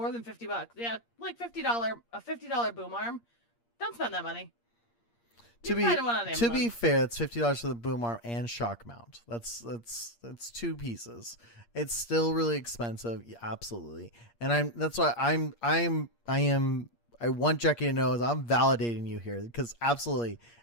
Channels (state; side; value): late; right; 8.6 ms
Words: than $50. Yeah, like a $50 boom arm. Don't spend that money. To be fair, it's $50 for the boom arm and shock mount. That's two pieces. It's still really expensive, yeah, absolutely. And I want Jackie to know is I'm validating you here, because absolutely